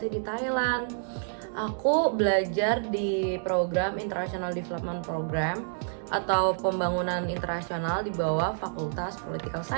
di Thailand. Aku belajar di program International Development Program atau pembangunan internasional di bawah Fakultas Political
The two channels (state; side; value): silent; left; digital silence